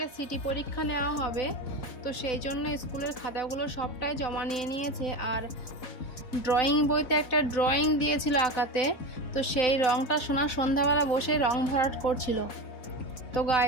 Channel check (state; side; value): late; right; 4.0 ms